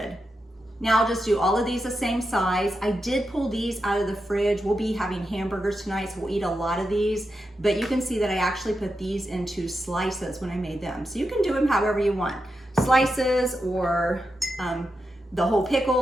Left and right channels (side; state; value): both; normal; correlation 0.88